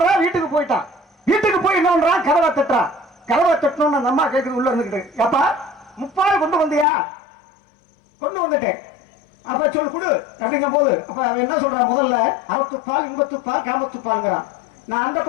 வீட்டுக்கு போயிட்டான். வீட்டுக்கு போய் என்ன பண்றான், கதவை தட்டுறான். கதவை தட்டணும்னு அந்த அம்மா கேட்குது உள்ள இருந்துக்கிட்டு, அப்பா முப்பால் கொண்டு வந்தியா? கொண்டு வந்துட்டேன். அப்ப சொல்லு கொடு அப்படிங்கும் போது அப்ப அவன் என்ன சொல்றான், முதல்ல அறத்துப்பால், இன்பத்துப்பால், காமத்துப்பால்ங்கிறான். நான் அந்த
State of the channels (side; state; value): right; drops out; at 6.9 s